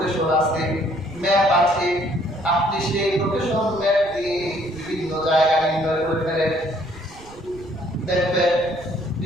আছে, ম্যাপ আছে, আপনি সেই লোকেশন ম্যাপ দিয়ে বিভিন্ন জায়গা নির্ণয় করে ফেলেন। দেখবেন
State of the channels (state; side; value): noise; right; rumble, 20 dB below the sound